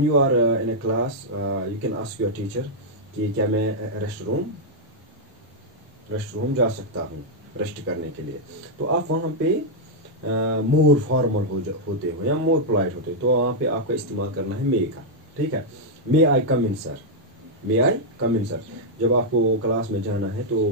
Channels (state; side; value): normal; both; correlation -0.04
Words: you are in a class, you can ask your teacher कि क्या मैं restroom जा सकता हूँ rest करने के लिए। तो आप वहाँ पे मोर फॉर्मल होते हो या मोर पोलाइट होते हो, तो वहाँ पे आपका इस्तेमाल करना है मे का। ठीक है, मे I come in sir, may I come in sir. जब आपको क्लास में जाना है तो